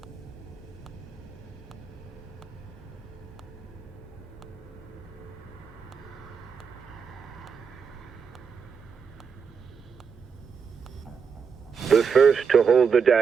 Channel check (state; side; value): quieter; left; 6.2 dB